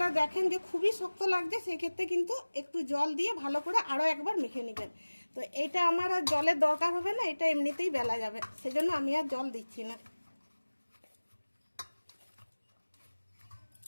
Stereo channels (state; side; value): inverted; both; correlation -1.00